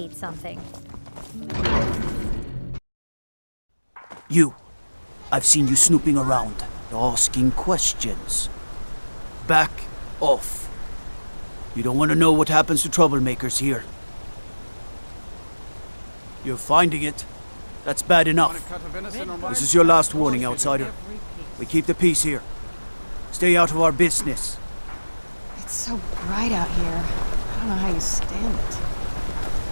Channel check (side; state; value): both; inverted; correlation -1.00